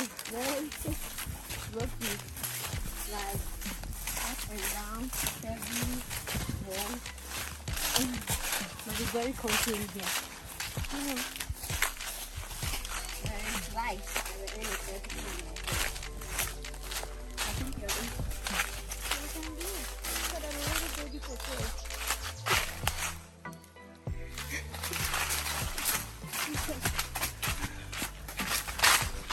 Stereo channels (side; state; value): both; identical; correlation 1.00